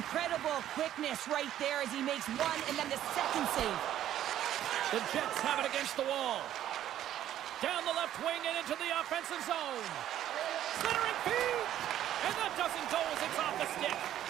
quickness right there as he makes one and then the second save. The Jets have it against the wall. Down the left wing and into the offensive zone. Centering feed! And that doesn't go as it's off the stick.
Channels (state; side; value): quieter; left; 11.8 dB